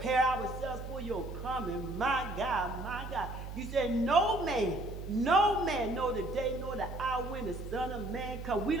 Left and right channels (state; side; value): noise; right; hum, 8 dB below the sound